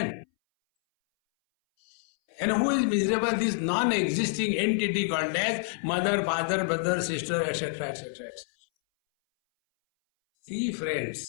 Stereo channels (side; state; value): right; silent; 60 dB below the other